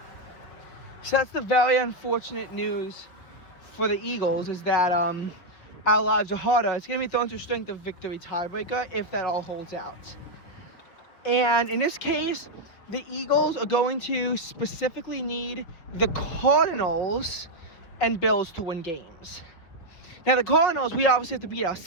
that's the very unfortunate news for the Eagles, is that our lives are harder. It's going to be thrown to strength of victory tiebreaker if that all holds out. And in this case, the Eagles are going to specifically need the Cardinals and Bills to win games. Now, the Cardinals, we obviously have to beat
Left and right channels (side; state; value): right; late; 5.5 ms